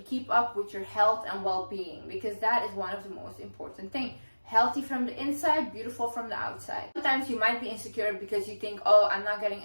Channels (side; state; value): both; inverted; correlation -1.00